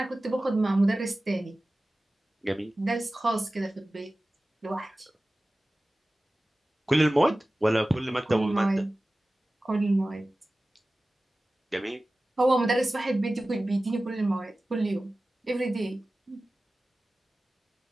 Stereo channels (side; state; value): both; normal; correlation 0.96